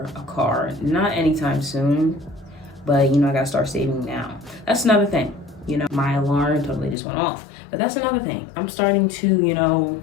a car. Not anytime soon, but, you know, I gotta start saving now. That's another thing. You know, my alarm totally just went off, but that's another thing. I'm starting to, you know,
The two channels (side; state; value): right; drops out; at 7.0 s